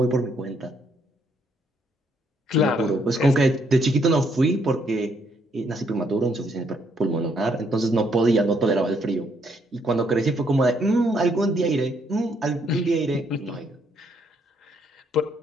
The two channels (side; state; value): both; normal; correlation 0.72